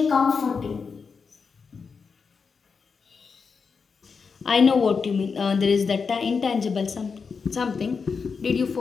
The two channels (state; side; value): quieter; right; 5.4 dB